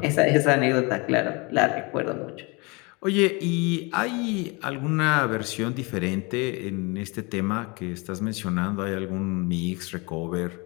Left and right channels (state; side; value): quieter; right; 28.1 dB